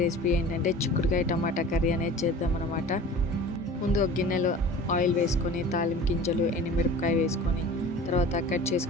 రెసిపీ ఏంటంటే చిక్కుడుకాయ టమాటా కర్రీ అనేది చేద్దామన్నమాట. ముందు ఒక గిన్నెలో ఆయిల్ వేసుకొని తాలింపు గింజలు, ఎండుమిరపకాయ వేసుకొని తర్వాత కట్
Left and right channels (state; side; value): normal; both; correlation 0.40